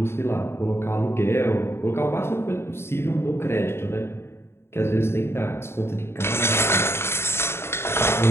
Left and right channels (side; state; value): right; late; 0.12 ms